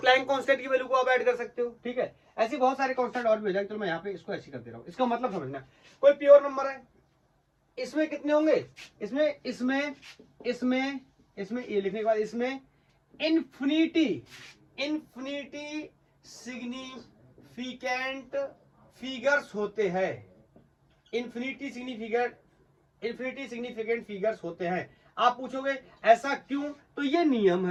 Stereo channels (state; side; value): identical; both; correlation 1.00